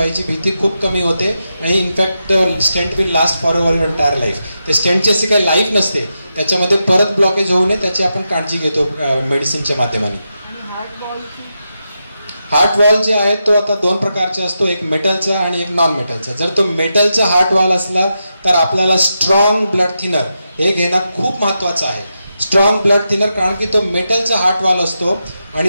भीती खूप कमी होते आणि in fact stent will last for your entire life. ते स्टेंटची अशी काही लाईफ नसते, त्याच्यामध्ये परत ब्लॉकेज होऊ नये त्याची आपण काळजी घेतो मेडिसिनच्या माध्यमाने. हार्ट वॉल जे आहे तो आता दोन प्रकारचे असतो, एक मेटलचा आणि एक नॉन मेटलचा. जर तो मेटलचा हार्ट वॉल असला तर आपल्याला स्ट्रॉंग ब्लड थिनर हे घेणं खूप महत्वाचं आहे. स्ट्रॉंग ब्लड थिनर, कारण की तो मेटलचा हार्ट वॉल असतो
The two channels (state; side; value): inverted; both; correlation -0.87